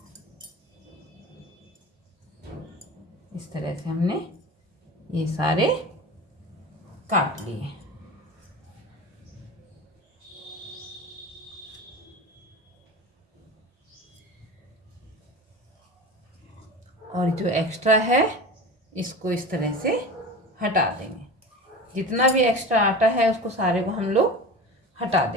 इस तरह से हमने ये सारे काट लिए। और जो एक्स्ट्रा है इसको इस तरह से हटा देंगे। जितना भी एक्स्ट्रा आटा है उसको सारे को हम लोग हटा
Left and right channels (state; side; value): normal; both; correlation 0.31